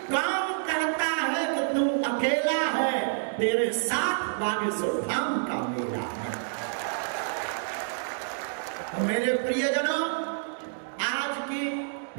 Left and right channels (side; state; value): left; silent; digital silence